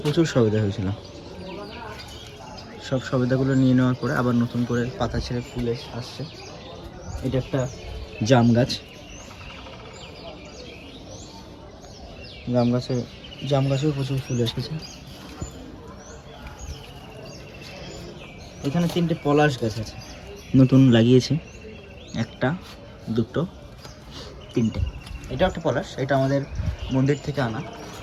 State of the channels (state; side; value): identical; both; correlation 1.00